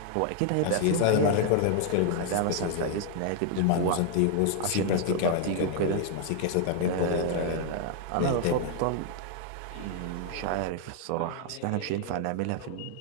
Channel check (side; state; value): both; different; correlation 0.00